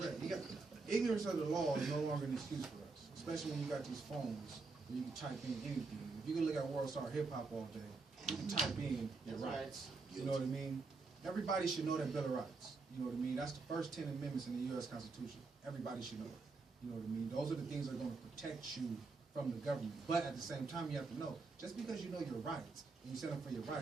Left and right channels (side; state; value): left; quieter; 4.0 dB